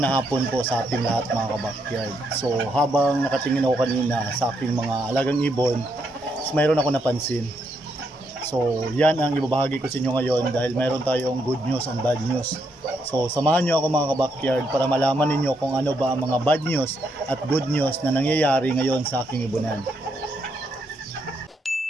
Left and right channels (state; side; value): normal; both; correlation 0.78